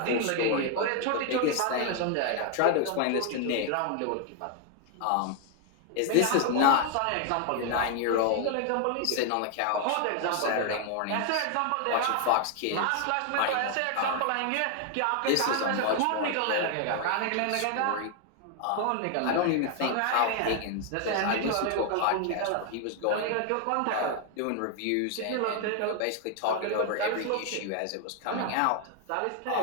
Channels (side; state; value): both; different; correlation 0.00